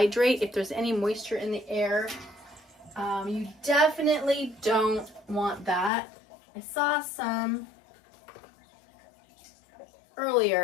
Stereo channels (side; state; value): right; drops out; at 5.9 s